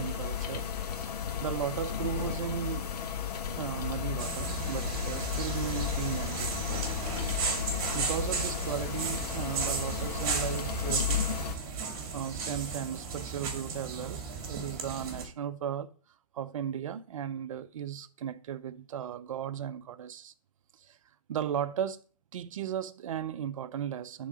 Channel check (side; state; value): both; normal; correlation -0.17